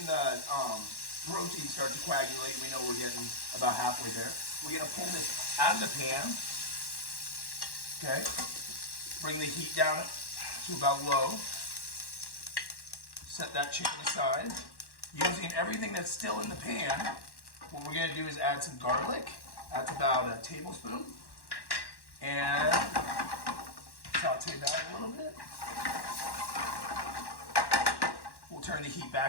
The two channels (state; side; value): late; right; 1.1 ms